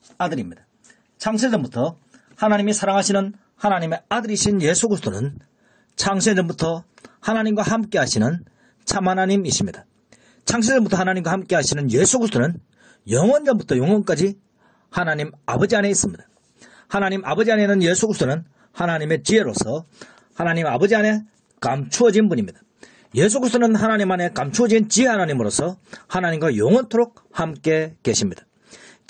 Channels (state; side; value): identical; both; correlation 1.00